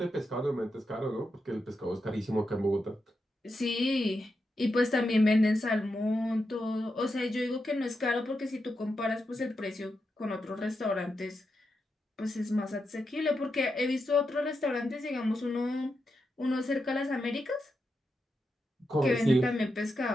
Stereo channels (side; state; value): both; normal; correlation 0.86